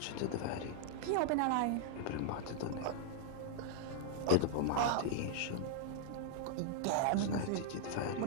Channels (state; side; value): different; both; correlation -0.01